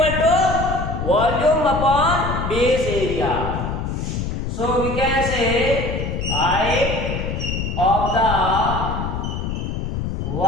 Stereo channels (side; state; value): left; noise; rumble, 3 dB below the sound